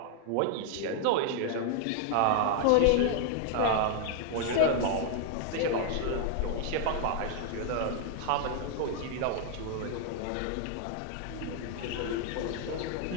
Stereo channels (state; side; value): different; both; correlation 0.00